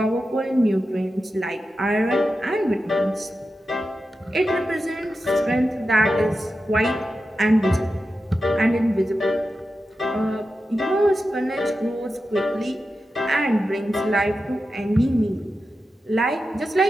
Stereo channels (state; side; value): normal; both; correlation 0.91